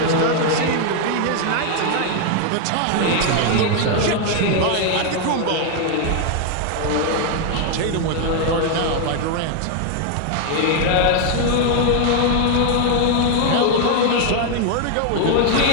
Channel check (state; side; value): different; both; correlation 0.00